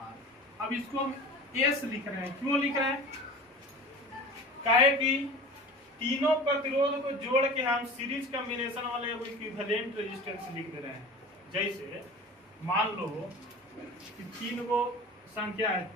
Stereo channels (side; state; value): both; normal; correlation 0.37